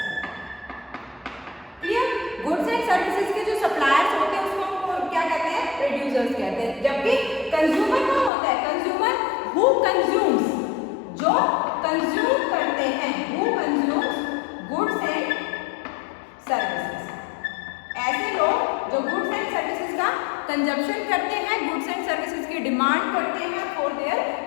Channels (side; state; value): right; drops out; at 8.3 s